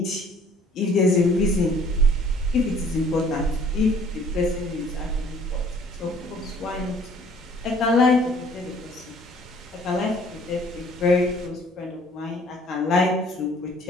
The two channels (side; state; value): both; normal; correlation 0.57